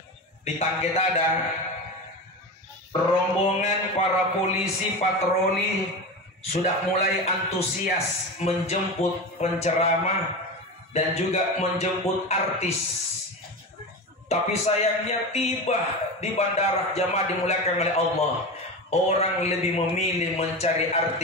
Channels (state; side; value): normal; both; correlation 0.24